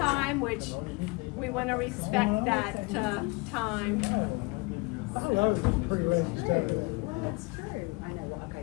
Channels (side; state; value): right; quieter; 27.3 dB